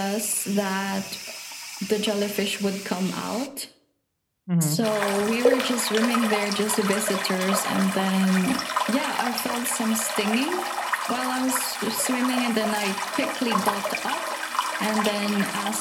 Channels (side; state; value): both; identical; correlation 1.00